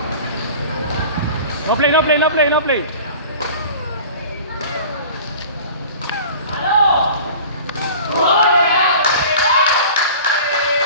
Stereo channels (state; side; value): inverted; both; correlation -0.41